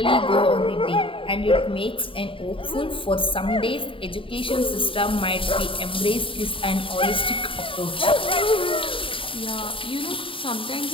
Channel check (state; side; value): late; right; 0.25 ms